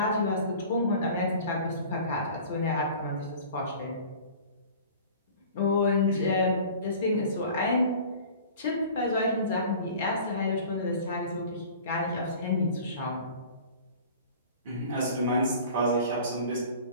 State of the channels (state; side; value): inverted; both; correlation -0.43